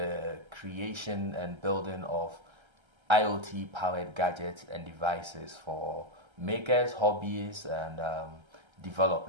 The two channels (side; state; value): left; late; 1.3 ms